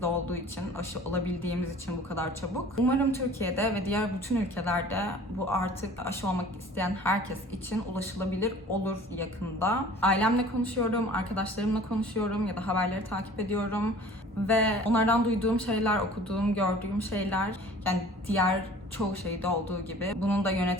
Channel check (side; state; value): both; normal; correlation 0.47